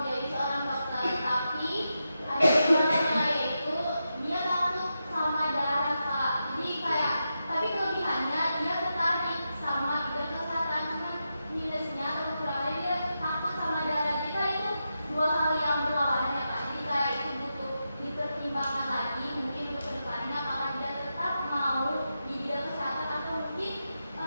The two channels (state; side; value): inverted; both; correlation -0.88